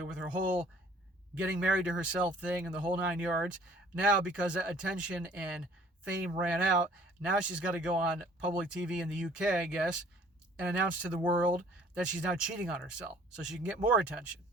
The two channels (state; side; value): normal; both; correlation 0.55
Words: with her whole getting married to herself thing and the whole 9 yards, now because that attention and fame ran out, now she's got to go on public TV in the UK, I guess, and announce to the world that she's now cheating on herself so she can get more attention.